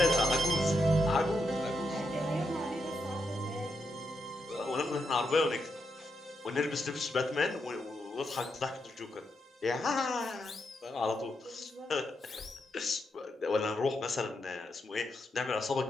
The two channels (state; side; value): normal; both; correlation 0.83